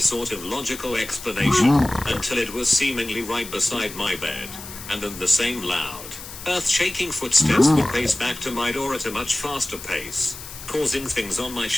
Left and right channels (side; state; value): left; noise; hiss, 13 dB below the sound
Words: of logical explanation, until it was seemingly right beside my bed. And then the same loud, earth-shaking footsteps would pace back to my door at a much faster pace, causing things on my